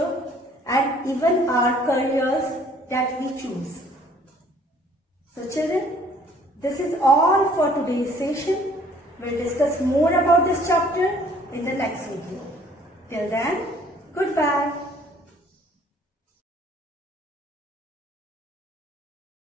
and even our careers that we choose. So children, this is all for today's session. We'll discuss more about this chapter in the next video. Till then, goodbye.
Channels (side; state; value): both; normal; correlation 0.58